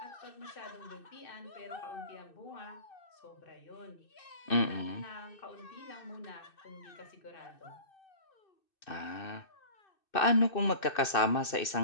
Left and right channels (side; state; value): right; late; 2.6 ms